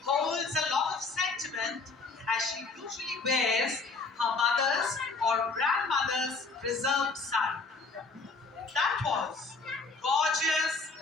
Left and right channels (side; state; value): right; quieter; 4.1 dB